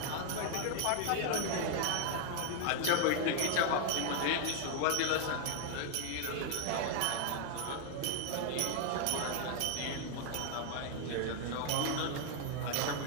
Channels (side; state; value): both; different; correlation 0.00